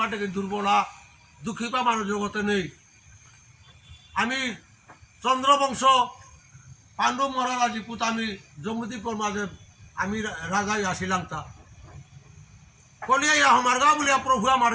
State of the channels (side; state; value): both; identical; correlation 1.00